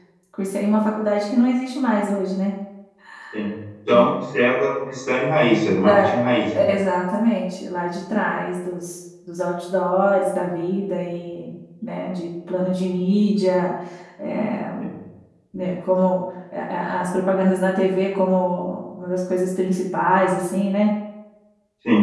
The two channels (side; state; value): both; identical; correlation 1.00